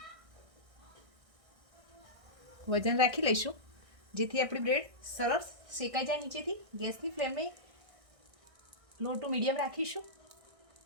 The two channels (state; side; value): late; left; 1.6 ms